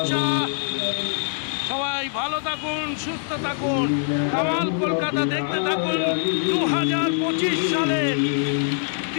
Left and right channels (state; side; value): silent; right; digital silence